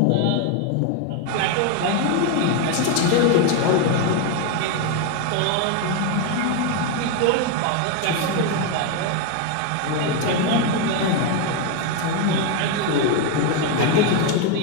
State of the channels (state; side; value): different; both; correlation 0.02